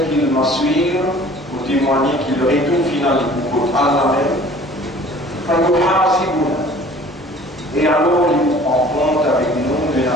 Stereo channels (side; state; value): both; normal; correlation 0.49